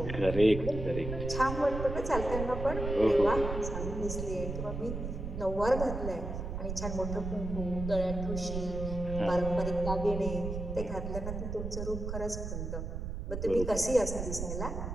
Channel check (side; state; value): right; noise; rumble, 5 dB below the sound